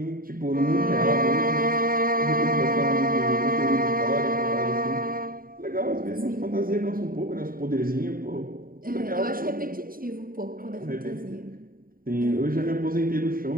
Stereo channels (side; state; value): left; late; 0.41 ms